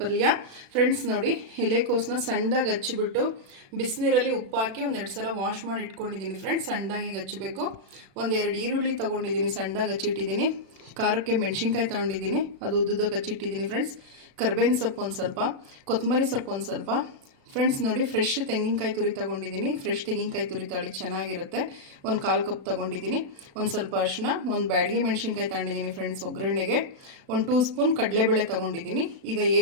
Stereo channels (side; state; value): left; late; 36 ms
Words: ಫ್ರೆಂಡ್ಸ್ ನೋಡಿ, ಎಲೆಕೋಸನ್ನ ಸಣ್ಣದಾಗಿ ಹಚ್ಚಿಬಿಟ್ಟು ಬಿಸಿನೀರಲ್ಲಿ ಉಪ್ಪು ಹಾಕಿ ಒಂದೆರಡು ಸಲ ವಾಶ್ ಮಾಡಿ ಇಟ್ಕೊಂಡಿದ್ದೀನಿ. ಫ್ರೆಂಡ್ಸ್, ಸಣ್ಣದಾಗಿ ಹಚ್ಚಬೇಕು. ಒಂದೆರಡು ಈರುಳ್ಳಿ ತೊಗೊಂಡಿದ್ದೀನಿ, ಸಣ್ಣದಾಗಿ ಹಚ್ಚಿಟ್ಟಿದ್ದೀನಿ. ಖಾರಕ್ಕೆ ಮೆಣಸಿನ್ಕಾಯಿ ತೊಗೊಂಡಿದ್ದೀನಿ, ಅದು ಉದ್ದುದಾಗಿ ಹಚ್ಚಿಟ್ಟಿದ್ದೀನಿ. ಫ್ರೆಂಡ್ಸ್, ಕರ್ಬೇವಿನ ಸೊಪ್ಪು ಒಂದು ಸ್ವಲ್ಪ, ಕೊತ್ತಂಬರಿ ಸೊಪ್ಪು ಒಂದು ಸ್ವಲ್ಪ. ಫ್ರೆಂಡ್ಸ್ ನೋಡಿ, ಫ್ರೆಶ್ ತೆಂಗಿನಕಾಯಿ ತುರಿ ತೊಗೊಂಡಿದ್ದೀನಿ. ಫ್ರೆಶ್ ತೆಂಗಿನಕಾಯಿ ತುರಿ ತಳಿ ಚೆನ್ನಾಗಿರುತ್ತೆ. ಒಂದು 1/4 ಕಪ್ ತೊಗೊಂಡಿದ್ದೀನಿ. ಒಂದು ಸ್ವಲ್ಪ ಅರಿಶಿನ, ಒಂದು ಬ್ಯಾಡಗಿ ಮೆಣಸಿನ್ಕಾಯಿ ತೊಗೊಂಡಿದ್ದೀನಿ. ಫ್ರೆಂಡ್ಸ್, ಒಗ್ಗರಣೆಗೆ 1 2 ಸ್ಪೂನ್ ಕಡಲೆಬೇಳೆ ತೊಗೊಂಡಿದ್ದೀನಿ. ಈಗ